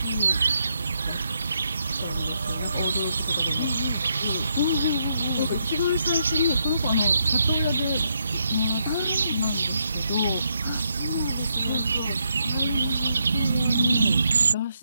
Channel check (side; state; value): both; inverted; correlation -0.78